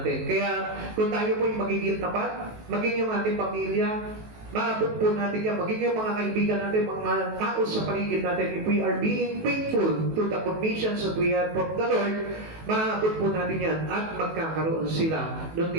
Kaya kung tayo po yung magiging tapat, maging yung ating pamilya, maabot po natin yan, magiging mga kaibigan natin, mga tao sa paligid natin, if we are being faithful to the commissions that we have from the Lord, maabot po natin yan at magkakaroon sila ng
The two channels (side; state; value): left; late; 19 ms